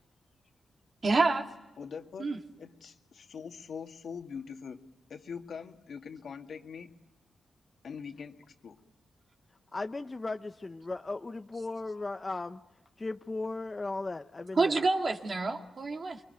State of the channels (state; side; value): normal; both; correlation 0.92